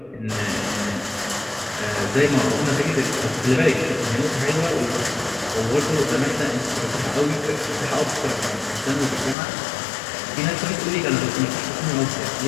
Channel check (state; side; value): drops out; right; at 9.3 s